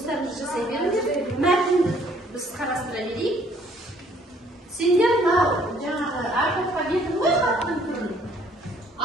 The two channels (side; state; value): both; normal; correlation 0.61